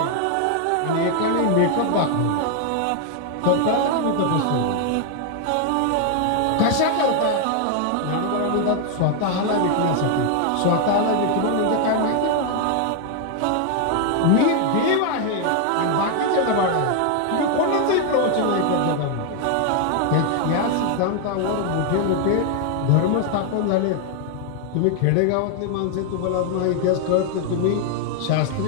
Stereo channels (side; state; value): both; different; correlation 0.00